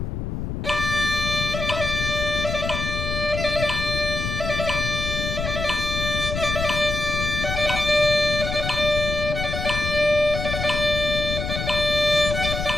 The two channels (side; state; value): left; noise; rumble, 4 dB below the sound